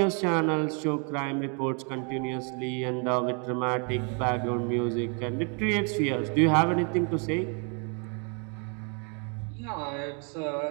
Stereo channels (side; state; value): left; quieter; 37.4 dB